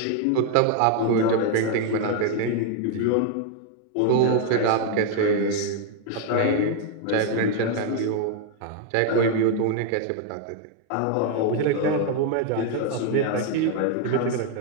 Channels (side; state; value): both; different; correlation 0.00